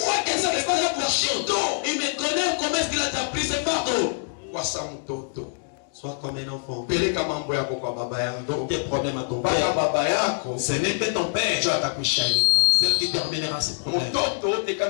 kesa nifanya bushito. Il me connaît, comment est-ce qu'il a pris ses fardeaux? Wasa mtoto. Sois comme un enfant. Peleka mambo yako kwa baba yako. Donc tes problèmes à ton Baba père. baba yako. Ce n'est que ton père Ndio atakwisha ile mambo. celle qui terminera ses problèmes. Mtoto wote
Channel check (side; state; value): right; silent; digital silence